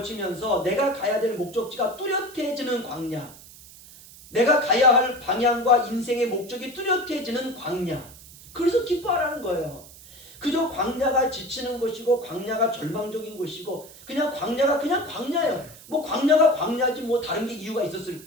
내가 가야 될 목적지가 뚜렷해지는 광야, 내가 가야 할 방향과 인생의 목적이 뚜렷해지는 광야. 그래서 기뻐하라는 거예요. 그저 광야가 지치는 것이고 광야가 절망적인 것이고 그냥 광야가 그냥 광야예요. 뭐 광야가 광야지 뭐 다른 게 이유가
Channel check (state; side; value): noise; right; hiss, 20 dB below the sound